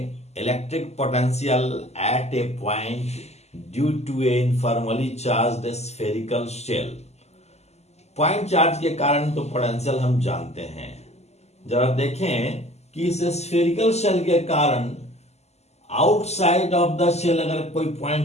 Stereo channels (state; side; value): late; right; 0.32 ms